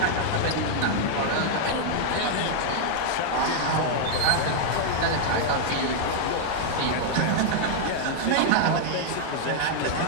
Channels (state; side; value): different; both; correlation 0.00